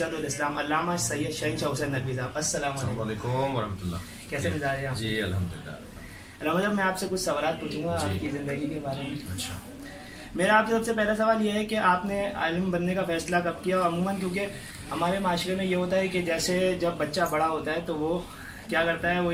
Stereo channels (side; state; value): both; identical; correlation 1.00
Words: الاسلام علامہ سید شہنشاہ حسین ندوی صاحب. السلام علیکم ورحمۃ اللہ. کیسے مزاج ہیں آپ؟ جی الحمدللہ. رحمت صاحب میں آپ سے کچھ سوالات پوچھوں گا آپ کی زندگی کے بارے میں. اچھا. میرا آپ سے سب سے پہلا سوال یہ ہے کہ آپ نے عالم بننے کا فیصلہ کب کیا؟ عموماً کیونکہ ہمارے معاشرے میں یہ ہوتا ہے کہ جیسے جب بچہ بڑا ہوتا ہے تو وہ کیا کرتا ہے، وہ